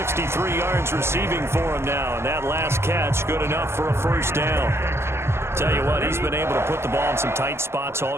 yards receiving for him now, and that last catch good enough for a first down. Tell you what, he's been able to put the ball in some tight spots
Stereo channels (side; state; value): left; late; 0.12 ms